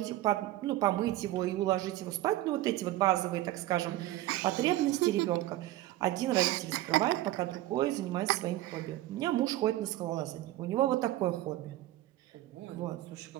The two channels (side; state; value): left; quieter; 15.6 dB